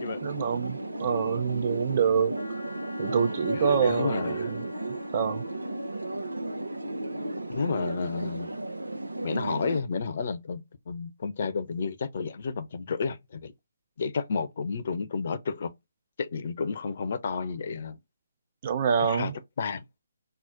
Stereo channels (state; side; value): inverted; both; correlation -0.74